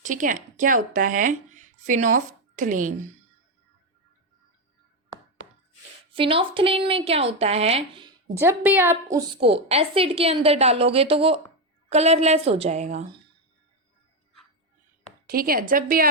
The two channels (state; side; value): normal; both; correlation 0.08